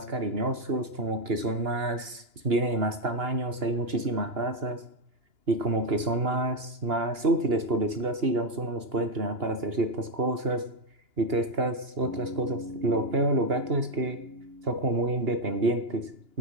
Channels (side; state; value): left; late; 2.9 ms